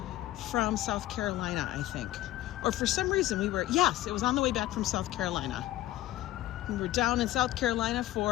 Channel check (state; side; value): quieter; right; 15.3 dB